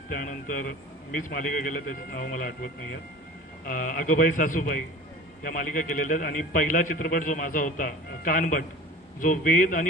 त्यानंतर मीच मालिका केल्या, त्याचं नाव मला आठवत नाही आहे, अगोबाई सासूबाई, या मालिका केलेल्या आहेत. आणि पहिला चित्रपट जो माझा होता कानभट, जो वेद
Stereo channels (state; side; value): normal; both; correlation 0.39